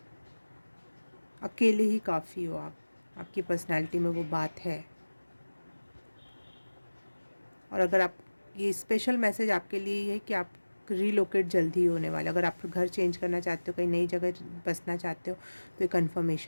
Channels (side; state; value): both; inverted; correlation -1.00